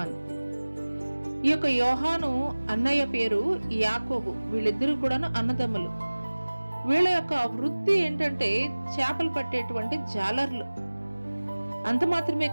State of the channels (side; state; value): both; inverted; correlation -1.00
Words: యొక్క యోహాను అన్నయ్య పేరు యాకోబు. వీళ్ళిద్దరూ కూడాను అన్నదమ్ములు. వీళ్ళ యొక్క వృత్తి ఏంటంటే చేపలు పట్టేటువంటి జాలర్లు. అంత మాత్రమే